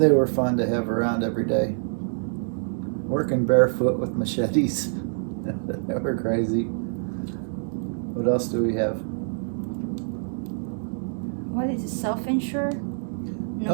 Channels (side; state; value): left; silent; digital silence